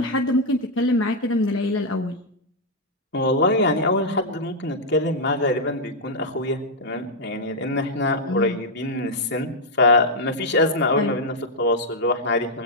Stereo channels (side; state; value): both; normal; correlation -0.04